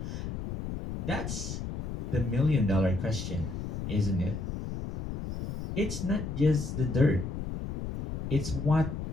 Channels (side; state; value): left; noise; rumble, 6 dB below the sound